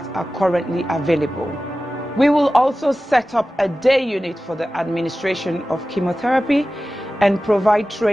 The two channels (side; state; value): both; normal; correlation 0.95